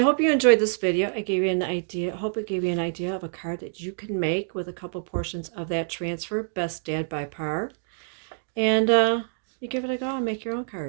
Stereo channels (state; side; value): silent; left; digital silence